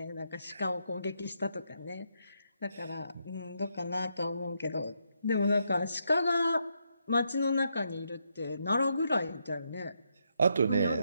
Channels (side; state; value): both; inverted; correlation -0.79